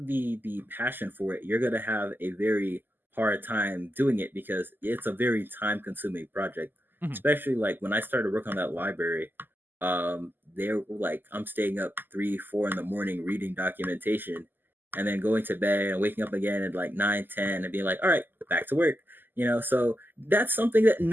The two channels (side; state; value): left; late; 0.091 ms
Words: the passion for it, you're going to have a very hard time doing it because it's a very time consuming project. Especially like when I started working on that library, they're like, I'm staying up 3-4 in the morning reading documentation and then going to bed and waking up again at like 9-10 and being like, all right, back to work. So that's something that